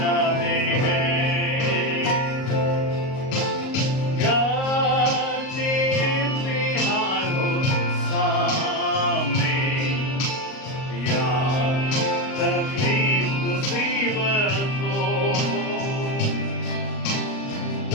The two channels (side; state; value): right; late; 38 ms